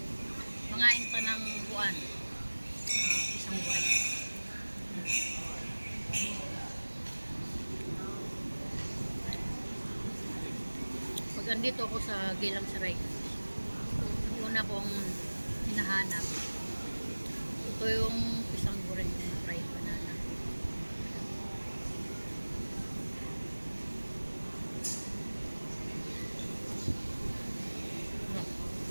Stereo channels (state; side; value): inverted; both; correlation -1.00